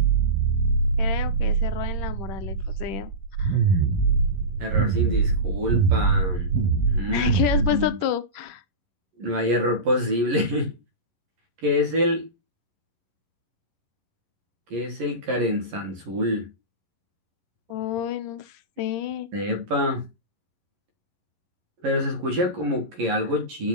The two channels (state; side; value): late; left; 11 ms